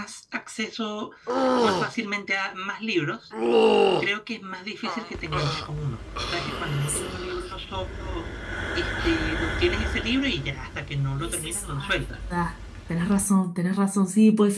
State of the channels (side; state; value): both; identical; correlation 1.00